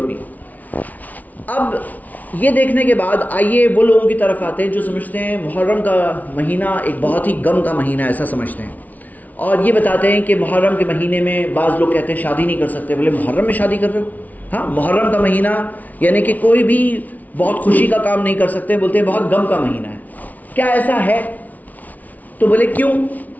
نہیں۔ اب یہ دیکھنے کے بعد آئیے وہ لوگوں کی طرف آتے ہیں جو سمجھتے ہیں محرم کا مہینہ ایک بہت ہی غم کا مہینہ ہے، ایسا سمجھتے ہیں، اور یہ بتاتے ہیں کہ محرم کے مہینے میں بعض لوگ کہتے ہیں شادی نہیں کر سکتے۔ بولے محرم میں شادی کر رہے ہو؟ ہاں، محرم کا مہینہ یعنی کہ کوئی بھی بہت خوشی کا کام نہیں کر سکتے، بولتے ہیں بہت غم کا مہینہ ہے۔ کیا ایسا ہے؟ تو بولے کیوں؟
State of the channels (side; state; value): right; late; 0.075 ms